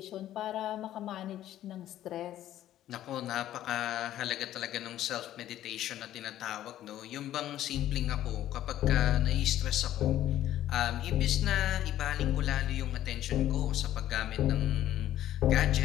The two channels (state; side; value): quieter; right; 12.7 dB